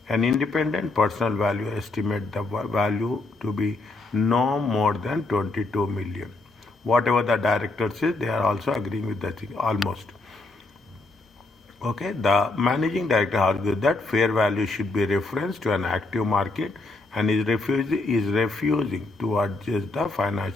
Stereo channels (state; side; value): quieter; right; 3.1 dB